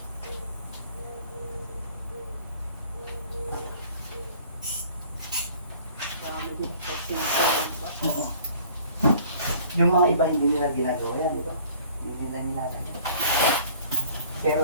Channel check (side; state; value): both; inverted; correlation -0.53